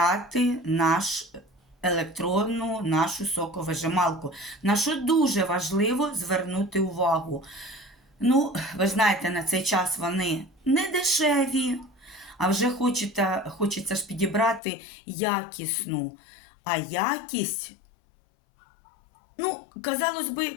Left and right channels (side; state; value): right; drops out; at 14.6 s